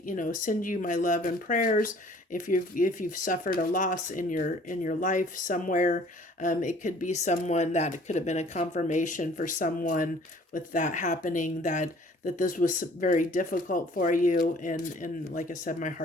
send you my love and prayers. If you've suffered a loss in your life somewhere, it could be someone that it could have been a confirmation for someone with that happening that this was very difficult for you. And like I said, my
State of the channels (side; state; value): both; normal; correlation 0.54